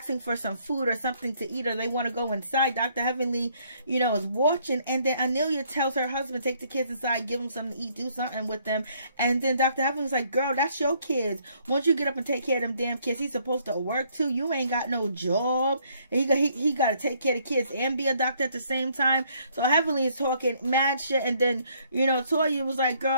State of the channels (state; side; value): inverted; both; correlation -0.66